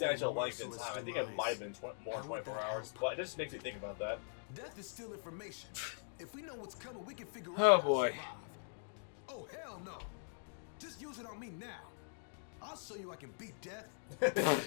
length in time. I think it might have been more than 24 hours, but it just makes me think about that. Death is still information. If we know what's coming, we can figure Oh, out how to boy. survive. Oh, hell no. Just use it on me now. I'll show you I can beat death.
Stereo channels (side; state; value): right; silent; digital silence